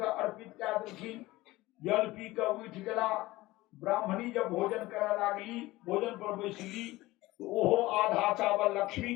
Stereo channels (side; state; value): right; quieter; 18.8 dB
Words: अर्पित कऽ देलखिन, जल पी के उठ गेला। ब्राह्मणी जब भोजन करऽ लागली, भोजन पर बैसली, तो ओहो आधा चावल लक्ष्मी